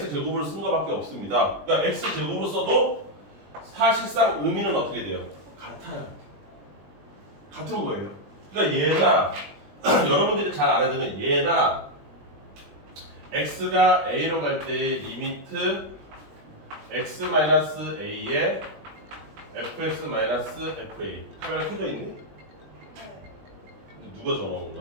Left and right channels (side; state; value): left; late; 21 ms